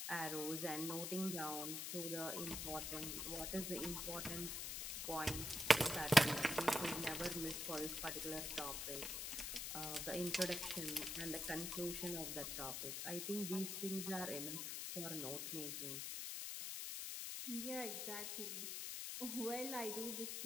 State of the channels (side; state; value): left; noise; hiss, 3 dB below the sound